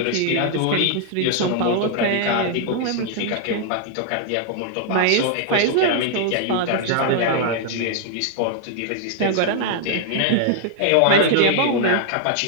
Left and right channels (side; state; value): both; different; correlation -0.01